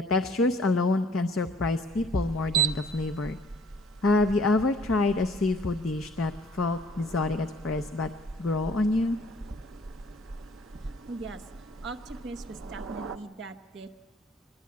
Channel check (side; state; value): both; normal; correlation 0.56